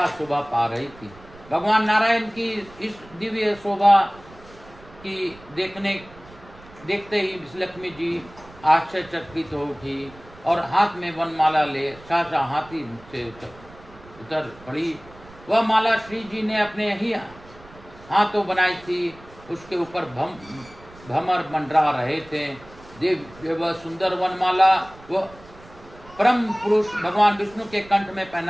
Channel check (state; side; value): noise; right; rumble, 22 dB below the sound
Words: शोभा पा रही थी। भगवान नारायण की इस दिव्य शोभा की देखते ही लक्ष्मी जी आश्चर्यचकित हो उठी और हाथ में वनमाला ले साचा हाथी से उतर पड़ी। वह माला श्री जी ने अपने ही हाथों बनाई थी। उसके ऊपर भमर मंडरा रहे थे। वह सुंदर वनमाला वो परम पुरुष भगवान विष्णु के कंठ में